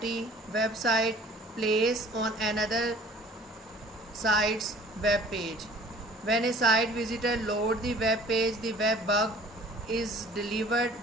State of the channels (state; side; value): normal; both; correlation 0.50